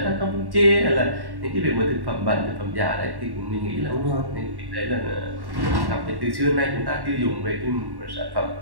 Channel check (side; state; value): left; late; 1.1 ms